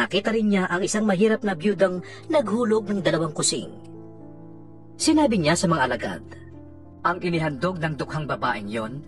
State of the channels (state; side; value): identical; both; correlation 1.00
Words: rin niya ang isang mahirap na biyudang naghulog ng 2 kusing. Sinabi niya sa mga alagad, "Ang inihandog ng dukhang babaeng yon